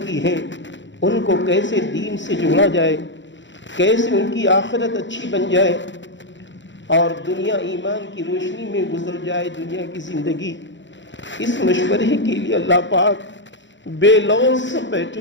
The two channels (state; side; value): late; right; 0.54 ms